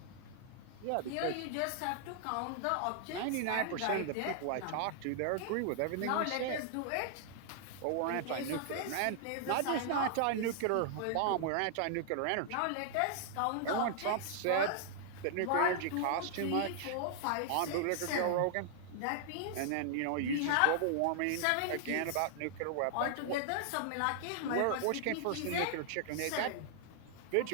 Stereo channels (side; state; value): both; different; correlation -0.01